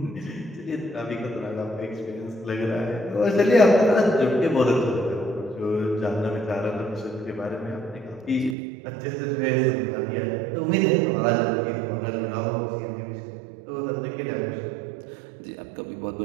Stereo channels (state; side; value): drops out; left; at 8.6 s